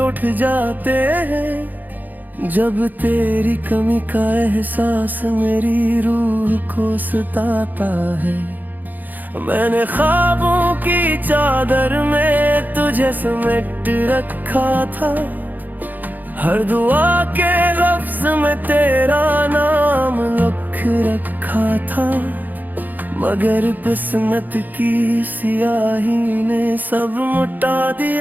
जाते हैं। जब तेरी कमी का एहसास मेरी रूह को सताता है। मैंने ख्वाबों की चादर में तुझे समेट रखा था, हर दुआ के लफ्ज में तेरा नाम लिख रखा था। मगर किस्मत की सियाही ने सब मिटा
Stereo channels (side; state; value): left; late; 0.084 ms